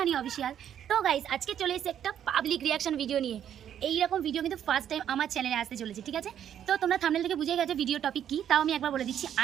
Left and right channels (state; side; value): quieter; left; 9.8 dB